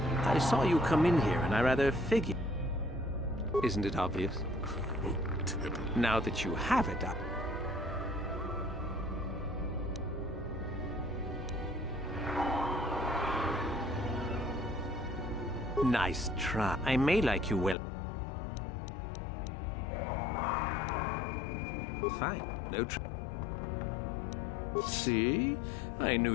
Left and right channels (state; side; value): drops out; right; at 17.8 s